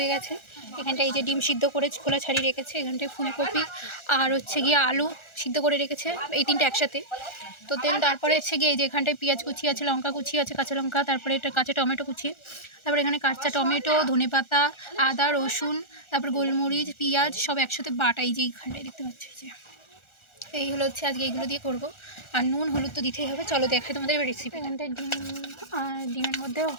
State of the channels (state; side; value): late; right; 1.4 ms